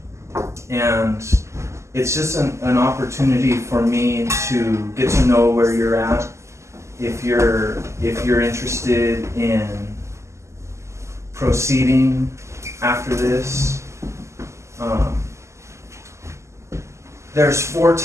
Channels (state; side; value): late; left; 0.13 ms